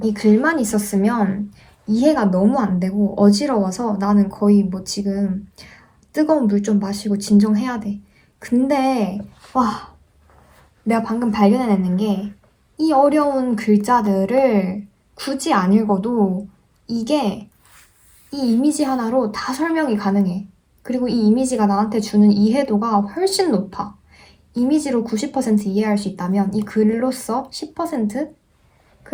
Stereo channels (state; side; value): identical; both; correlation 1.00